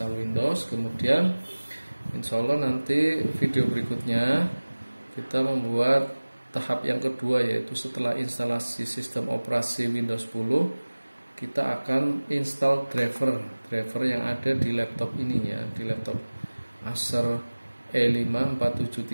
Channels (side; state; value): both; inverted; correlation -1.00